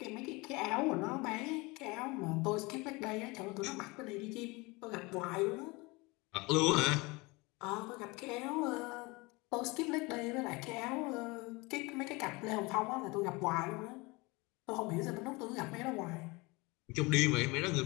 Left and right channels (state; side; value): quieter; right; 25.0 dB